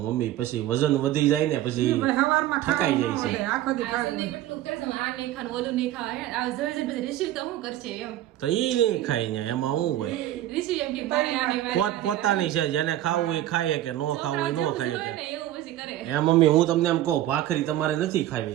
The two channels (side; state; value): left; quieter; 13.6 dB